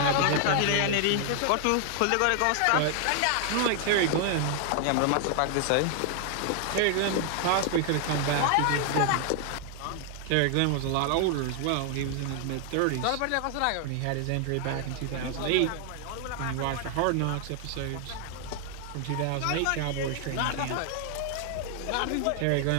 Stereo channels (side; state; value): both; different; correlation 0.00